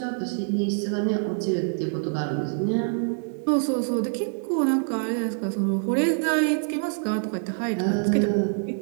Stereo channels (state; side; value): silent; left; 61 dB below the other